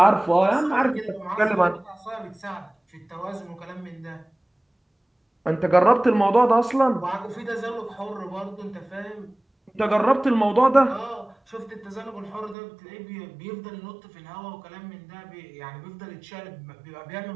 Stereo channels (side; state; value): left; drops out; at 12.6 s